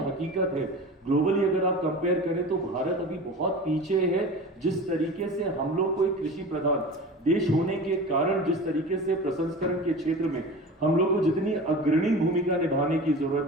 हकीकत है, ग्लोबली अगर आप कंपेयर करें तो भारत अभी बहुत पीछे है। जिस तरीके से हम लोग को एक कृषि प्रधान देश होने के कारण जिस तरीके से प्रसंस्करण के क्षेत्र में हम लोग को जितनी अग्रणी भूमिका निभाने की जरूरत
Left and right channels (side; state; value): both; normal; correlation 0.34